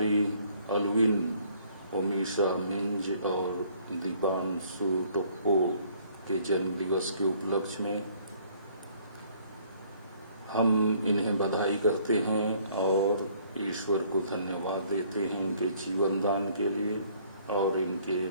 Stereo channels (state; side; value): inverted; both; correlation -0.61